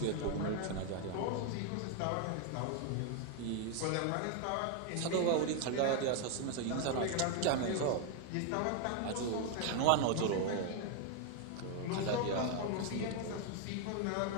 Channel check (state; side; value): different; both; correlation 0.01